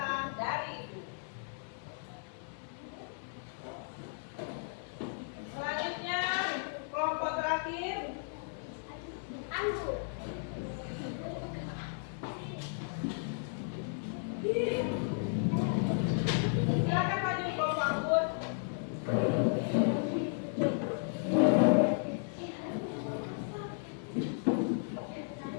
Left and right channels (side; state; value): right; silent; 55 dB below the other